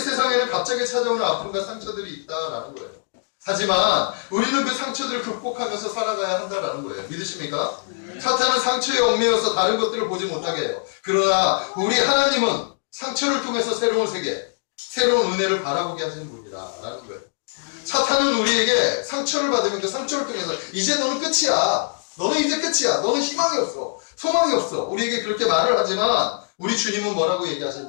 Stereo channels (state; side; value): silent; right; digital silence